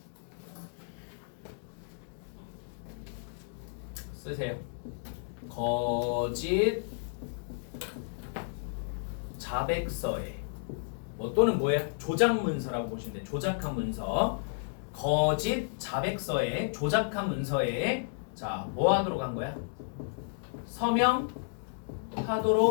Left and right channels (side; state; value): right; silent; digital silence